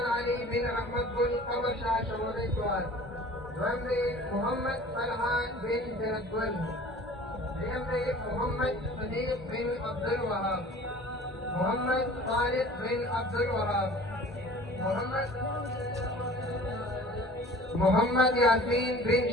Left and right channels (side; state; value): both; normal; correlation 0.45